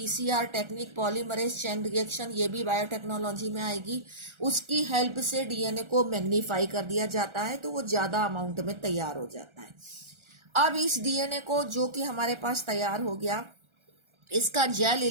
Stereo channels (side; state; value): left; late; 1.4 ms